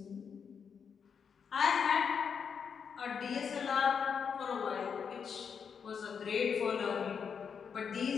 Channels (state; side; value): quieter; right; 6.7 dB